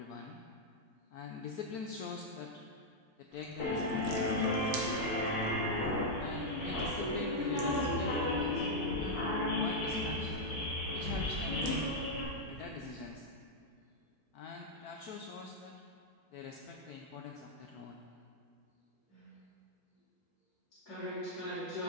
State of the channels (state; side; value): normal; both; correlation -0.03